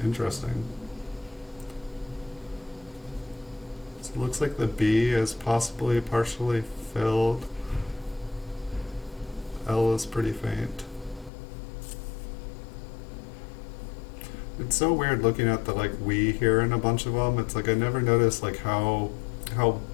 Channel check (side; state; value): right; drops out; at 11.3 s